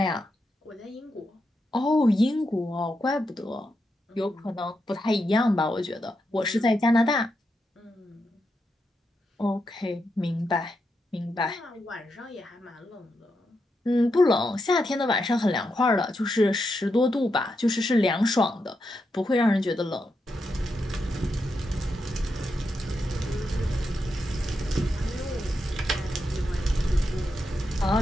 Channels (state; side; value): normal; both; correlation 0.84